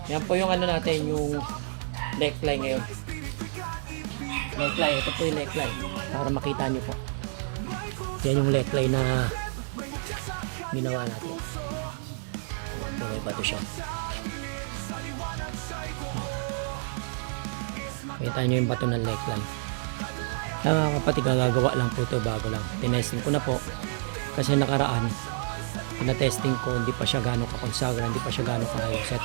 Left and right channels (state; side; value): silent; left; digital silence